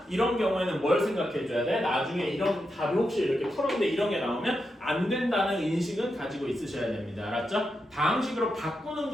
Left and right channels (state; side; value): normal; both; correlation 0.86